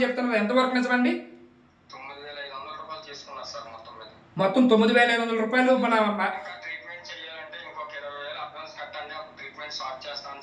చెప్తున్నారు. ఎంతవరకు నిజమండి? 9,500 రూపాయలు తీసుకున్నారు సార్ మొత్తం మీద. మొత్తం 9,500 రూపాయలు మన ట్రీట్మెంట్ చేయాలంటే ఇంకొక 20,000 అడ్వాన్స్ కట్టండి, అప్పుడు ట్రీట్మెంట్ స్టార్ట్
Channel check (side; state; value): both; identical; correlation 1.00